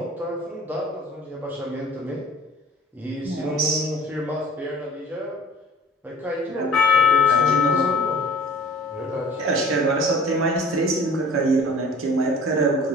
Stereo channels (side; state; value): both; normal; correlation 0.45